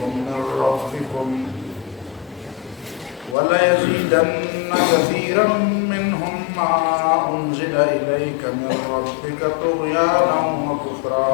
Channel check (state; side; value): drops out; right; at 3.4 s